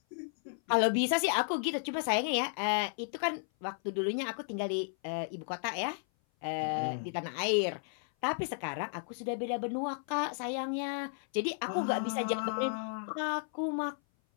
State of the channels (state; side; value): silent; right; 55 dB below the other